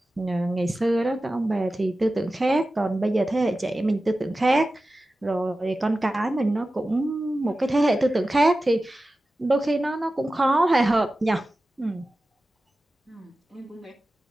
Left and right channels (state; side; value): normal; both; correlation 0.95